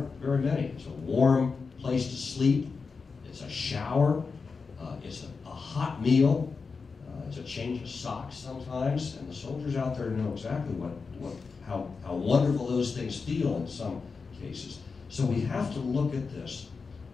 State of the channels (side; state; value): right; quieter; 4.8 dB